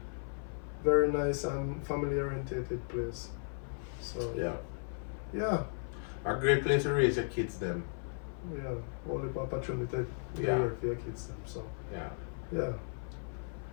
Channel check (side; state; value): right; silent; 54 dB below the other